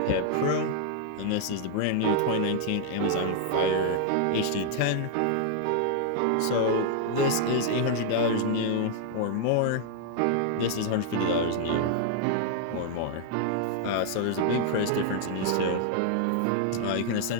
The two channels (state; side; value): different; both; correlation 0.00